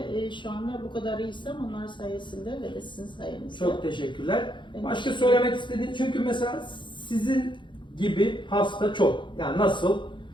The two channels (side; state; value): right; late; 0.23 ms